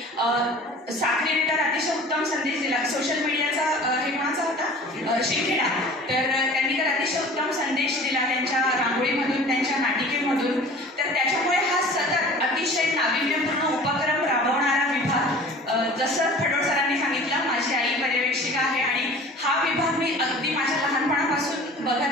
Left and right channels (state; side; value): normal; both; correlation 0.44